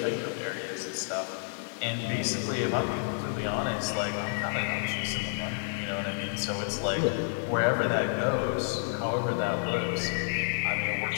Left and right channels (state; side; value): silent; right; 57 dB below the other